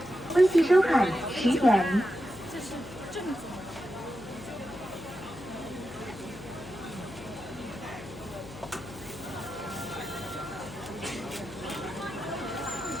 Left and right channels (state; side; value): noise; left; hum, 16 dB below the sound